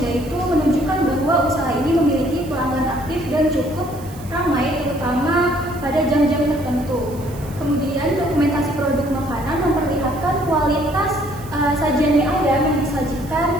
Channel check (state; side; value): noise; right; hiss, 20 dB below the sound